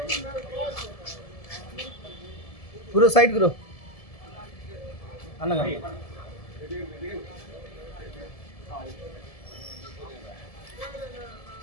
Guru side గురు అన్నగా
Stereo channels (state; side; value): late; right; 1.7 ms